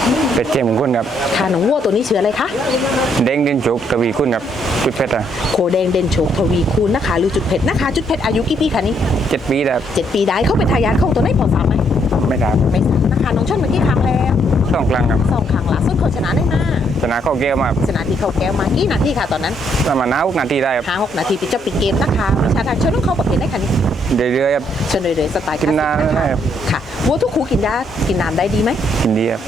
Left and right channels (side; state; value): both; normal; correlation 0.71